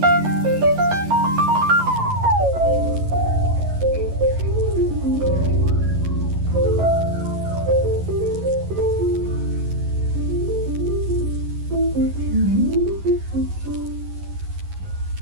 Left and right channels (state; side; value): late; left; 11 ms